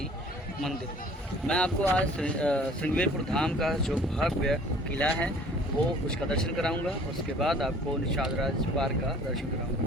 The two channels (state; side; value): normal; both; correlation 0.52